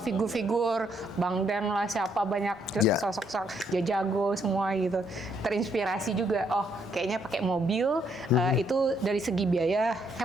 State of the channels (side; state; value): both; normal; correlation 0.72